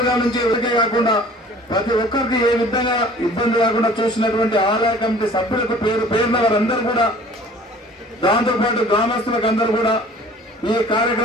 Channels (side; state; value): both; normal; correlation 0.49